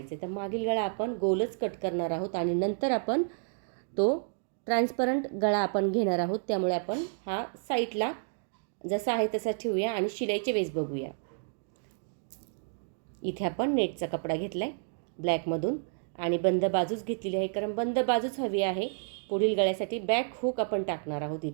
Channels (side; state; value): left; silent; digital silence